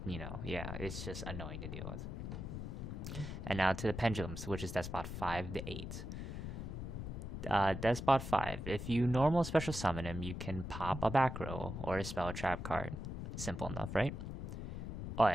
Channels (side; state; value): left; noise; rumble, 6 dB below the sound